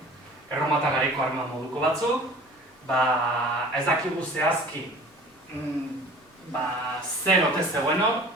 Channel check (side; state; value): both; normal; correlation 0.44